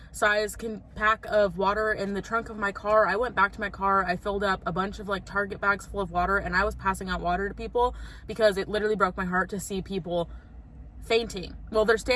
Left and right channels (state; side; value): identical; both; correlation 1.00